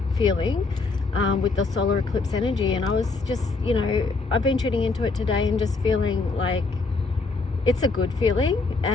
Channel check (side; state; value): right; quieter; 3.9 dB